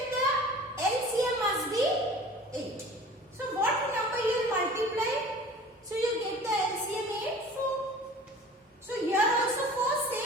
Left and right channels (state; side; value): normal; both; correlation 0.43